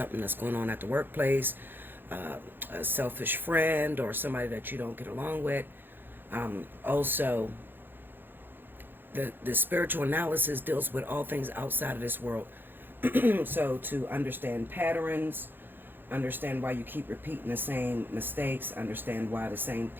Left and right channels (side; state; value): left; late; 0.097 ms